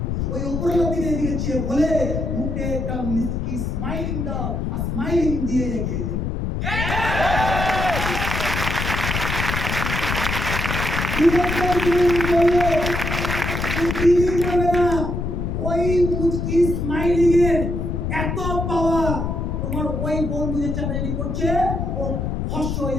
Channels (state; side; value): noise; left; rumble, 2 dB below the sound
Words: ওই উপরের দিকে দিয়েছে বলে মুখে একটা মিষ্টি স্মাইলিং দাও, আর স্মাইলিং দিয়ে এগিয়ে যাও। ওই মুচকি স্মাইলিং এর এত পাওয়ার, তোমার ওই বন্ধু যে চাকরি করছে ও ফস হয়ে